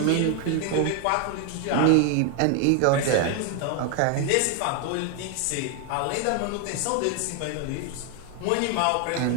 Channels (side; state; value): both; different; correlation 0.01